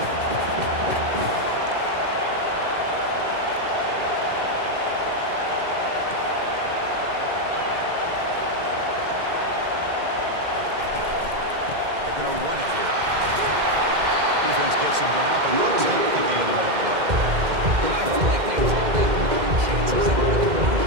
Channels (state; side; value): late; left; 2.1 ms